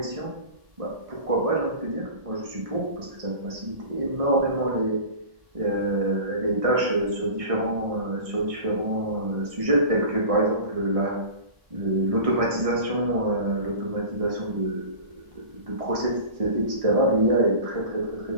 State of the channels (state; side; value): late; left; 1.6 ms